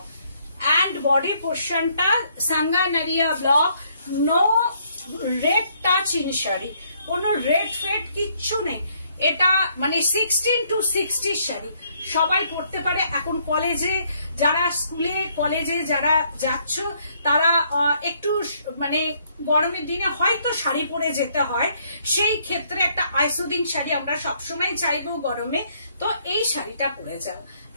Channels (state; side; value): inverted; both; correlation -0.69